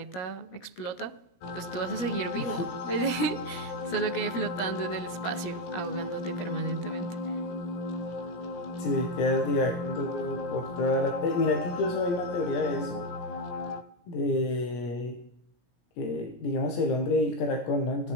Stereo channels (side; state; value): right; late; 17 ms